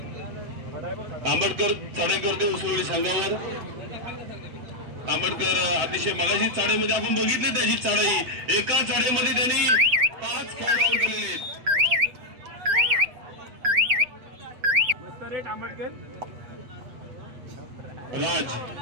आंबेडकर चढाई करतोय उसवळी संघावर. आंबेडकर अतिशय मगाशी चाळीमध्ये आपण बघितले त्याची चढाई. एका चढाईमध्ये त्यांनी 5 खेळाडू आउट केलेले आहेत. आंबेडकर राज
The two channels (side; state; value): left; late; 7.8 ms